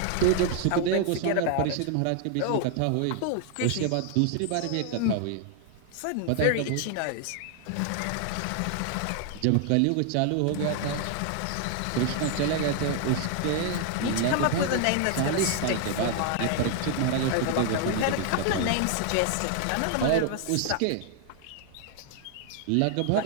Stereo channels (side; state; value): both; different; correlation 0.00